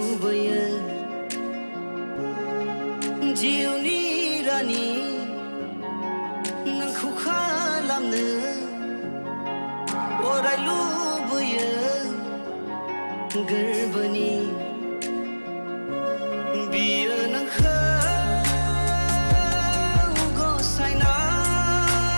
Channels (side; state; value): both; inverted; correlation -1.00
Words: जिउनि रानि नोंखौ खालामनो अराय लुबैयो गोरबोनि बियो नोंखौ